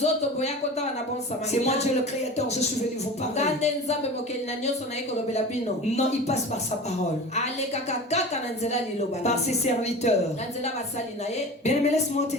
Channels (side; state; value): both; normal; correlation 0.34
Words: C'est moi Dieu le créateur, je suis venu vous parler. Non, il passe par sa parole, par ses serviteurs. Bien aimé, laisse-moi te